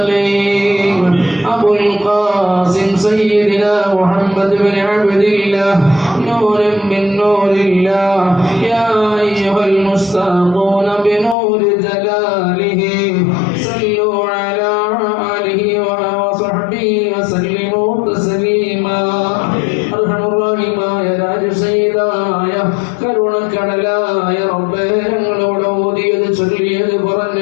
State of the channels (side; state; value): right; drops out; at 11.4 s